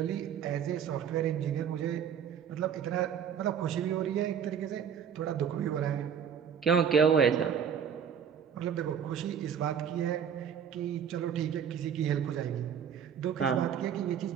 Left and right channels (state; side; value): quieter; left; 7.9 dB